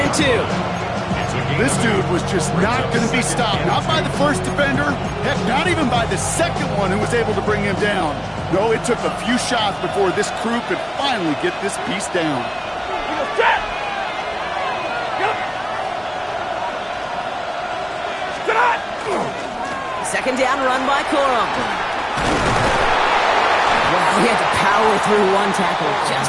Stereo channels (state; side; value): identical; both; correlation 1.00